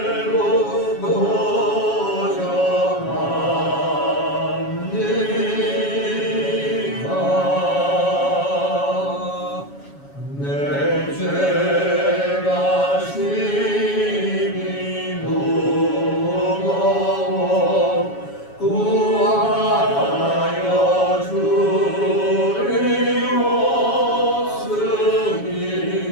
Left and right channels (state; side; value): late; right; 7.2 ms